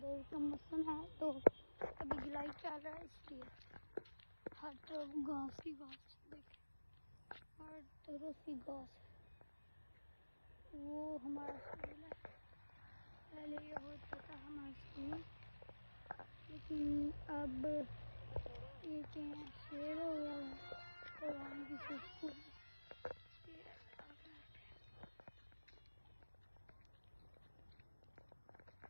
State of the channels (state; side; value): inverted; both; correlation -1.00